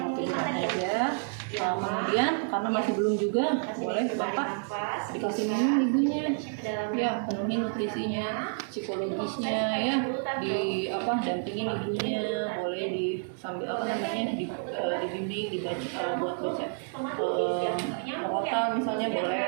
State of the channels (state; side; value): silent; left; 58 dB below the other